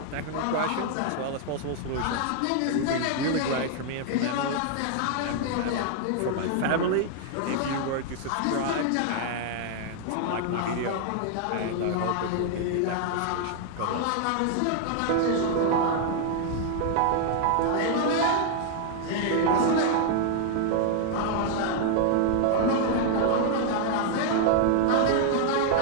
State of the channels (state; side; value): different; both; correlation 0.00